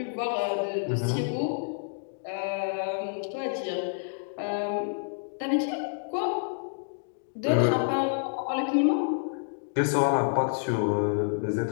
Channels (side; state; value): right; silent; digital silence